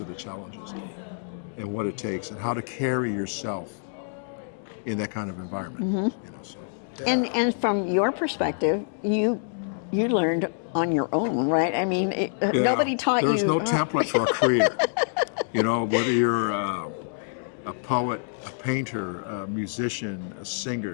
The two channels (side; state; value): right; silent; digital silence